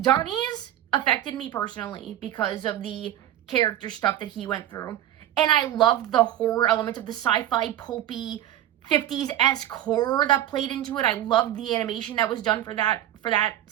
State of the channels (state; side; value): quieter; left; 12.3 dB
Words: Donnie's affected me personally because of the character stuff that he went through. And I loved the horror element of the sci-fi, pulpy, 50s-esque horror that played into it. I loved the animation that was done for that